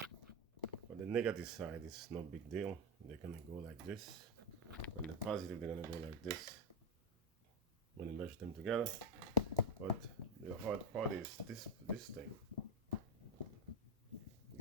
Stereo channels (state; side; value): normal; both; correlation 0.09